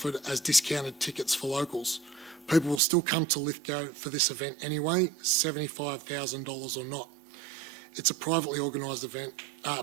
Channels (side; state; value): left; drops out; at 2.8 s